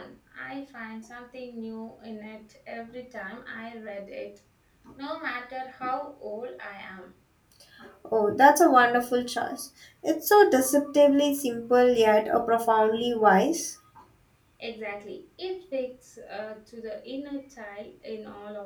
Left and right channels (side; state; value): both; identical; correlation 1.00